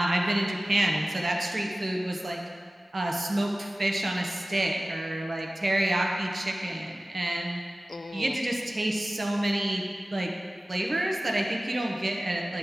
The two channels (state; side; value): normal; both; correlation 0.97